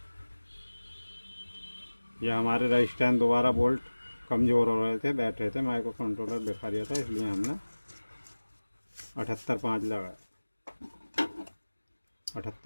ये हमारे रेजिस्टेंस दोबारा वोल्ट कमज़ोर हो रहे थे, बैठ रहे थे, माइक्रो कंट्रोलर बिखा रहा था, इसलिए हमने 78.5 लगाया।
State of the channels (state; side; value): inverted; both; correlation -1.00